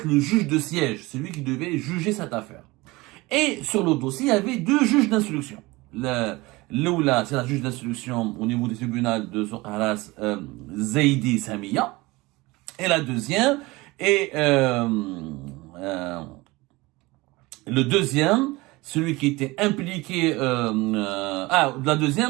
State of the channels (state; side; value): quieter; left; 21.9 dB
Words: le juge de siège. C'est lui qui devait juger cette affaire. Et sur le dossier, il y avait deux juges d'instruction. L'oula, c'est la juge d'instruction au niveau du tribunal de Soukharas, Zaidi Samia. Et la deuxième, le deuxième, celui qui était impliqué, le